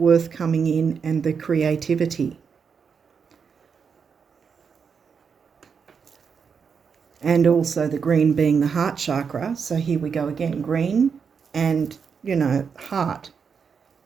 coming in and the creativity. And also the green being the heart chakra. So here we go again, green and, you know, heart.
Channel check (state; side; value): quieter; left; 6.2 dB